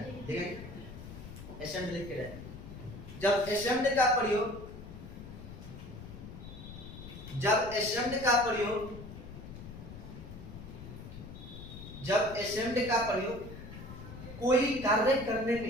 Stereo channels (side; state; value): left; noise; rumble, 12 dB below the sound